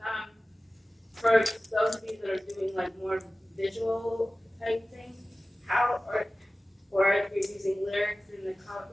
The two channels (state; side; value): normal; both; correlation 0.96